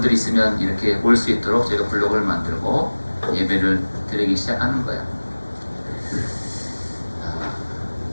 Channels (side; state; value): both; inverted; correlation -1.00